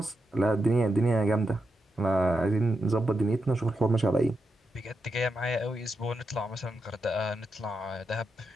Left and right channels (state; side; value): normal; both; correlation 0.86